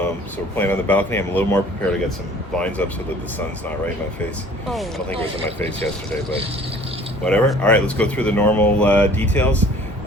we're playing on the balcony. I'm a little more prepared to get some blinds up so that the sun's not right in my face. I don't think it was in my face yesterday, but whatever. All right, let's go through the normal details.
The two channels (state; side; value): normal; both; correlation 0.50